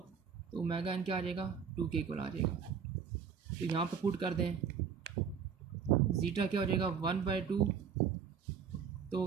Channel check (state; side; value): quieter; left; 7.0 dB